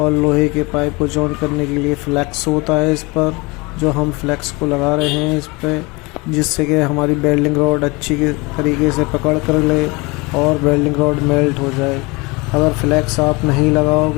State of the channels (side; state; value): right; quieter; 25.8 dB